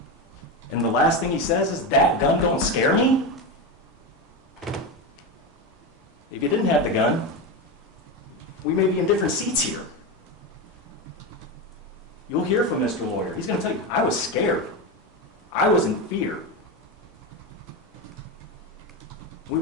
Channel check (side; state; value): both; normal; correlation 0.16